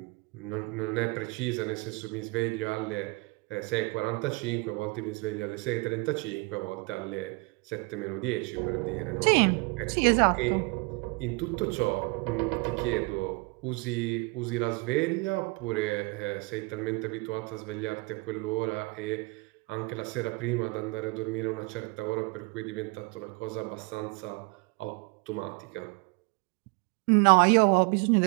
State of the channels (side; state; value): left; quieter; 27.3 dB